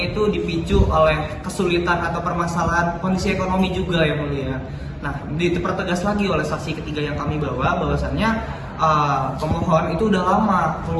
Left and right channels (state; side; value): identical; both; correlation 1.00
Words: itu dipicu oleh kesulitan atau permasalahan kondisi ekonomi juga yang mulia. Nah, dipertegas lagi oleh saksi ketiga yang kami bawa bahwasannya pemohon itu udah lama